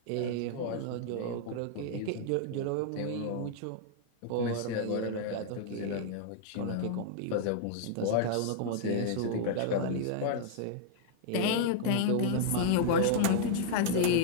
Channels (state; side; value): different; both; correlation -0.01